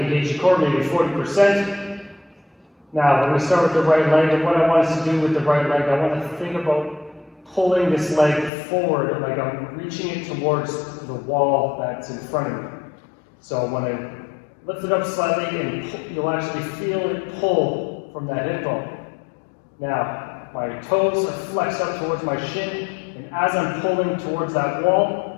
the core, maybe 40%. Now, we're going to start with the right leg, and what I want us to do with the right leg, I want to think about pulling this leg forward, like I'm reaching it towards the wall that's in front of me. So when I lift it up slightly, and you'll actually feel it pull from that hip bone. Now, my toes are flexed up towards my shin, and as I'm pulling towards that wall,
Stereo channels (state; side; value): drops out; right; at 8.5 s